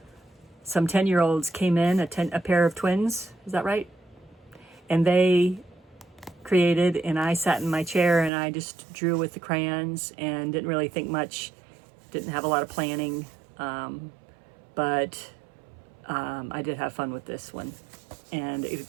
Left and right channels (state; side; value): drops out; left; at 8.3 s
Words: 10-year-olds came in, a pair of twins. Is that right? And they created, and I sat in my chair and I just drew with the crayons and didn't really think much. Didn't have a lot of planning. But I did have fun with this one. And